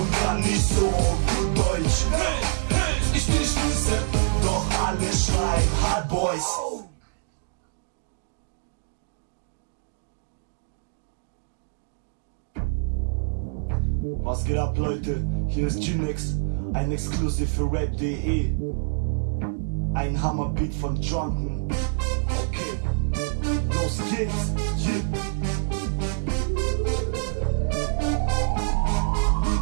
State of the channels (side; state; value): left; silent; digital silence